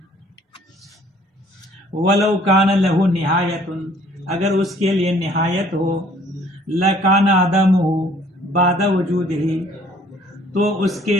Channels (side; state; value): both; normal; correlation 0.58